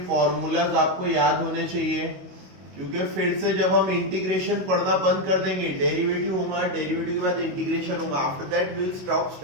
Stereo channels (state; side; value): late; left; 22 ms